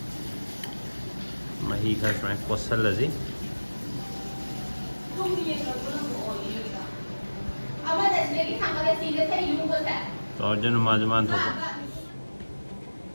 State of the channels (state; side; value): inverted; both; correlation -1.00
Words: ꯃꯍꯤ ꯈꯔ ꯁꯨꯃꯥꯏꯅ ꯀꯣꯠꯁꯜꯂꯁꯤ ꯇꯧꯔꯖꯅꯨ ꯃꯥꯁꯨ ꯃꯥꯅ ꯊꯣꯛꯄ